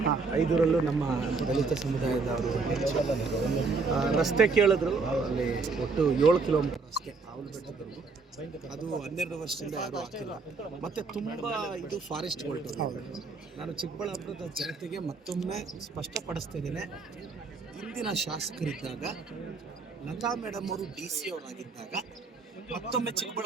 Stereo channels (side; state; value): left; quieter; 4.3 dB